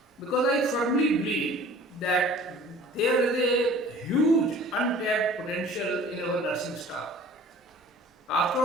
Because I firmly believe that there is a huge untapped potential in our nursing staff. After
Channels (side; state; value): both; normal; correlation 0.47